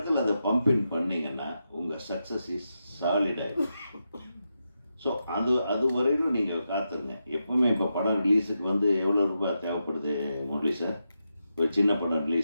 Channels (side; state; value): both; inverted; correlation -0.87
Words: அதை பம்பின் பண்ணிங்கன்னா உங்கள் சக்ஸஸ் இஸ் சாலிடாகும். ஸோ அது வரையிலும் நீங்கள் காத்துருங்க. எப்போவுமே இப்போ படம் ரிலீஸுக்கு வந்து எவ்வளோ ரூபாய் தேவைப்படுது முரளி சார்? ஒரு சின்ன படம்